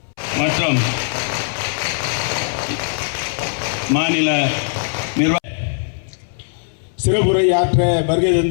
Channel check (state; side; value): silent; right; 66 dB below the other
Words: மற்றும் மாநில நிர்வாக சிறப்புரை ஆற்ற வருகை